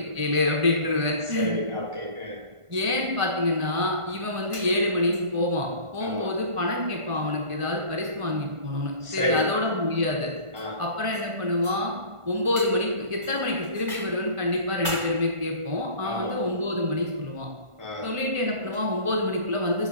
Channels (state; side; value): late; left; 1.5 ms